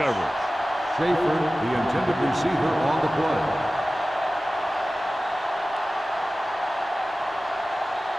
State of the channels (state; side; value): normal; both; correlation 0.96